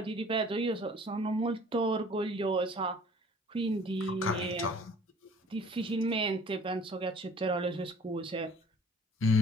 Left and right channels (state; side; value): normal; both; correlation 0.51